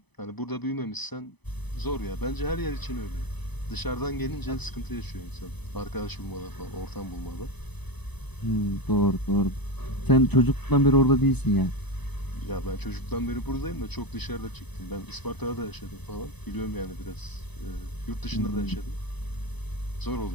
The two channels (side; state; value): right; late; 0.99 ms